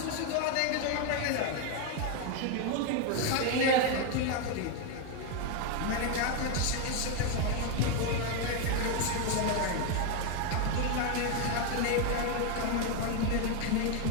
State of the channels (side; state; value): both; different; correlation 0.01